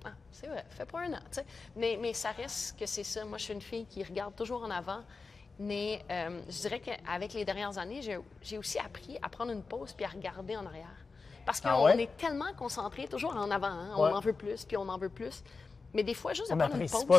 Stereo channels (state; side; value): quieter; right; 4.3 dB